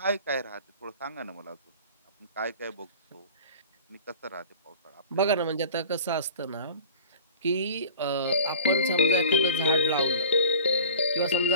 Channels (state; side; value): inverted; both; correlation -0.41